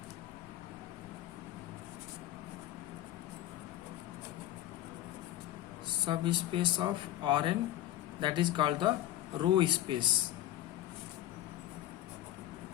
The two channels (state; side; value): quieter; right; 13.8 dB